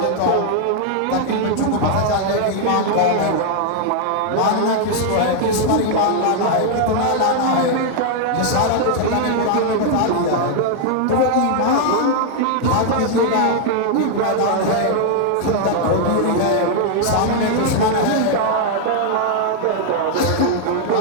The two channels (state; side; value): different; both; correlation 0.00